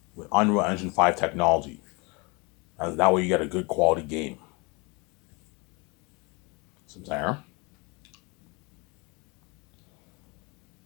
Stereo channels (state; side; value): quieter; right; 28.5 dB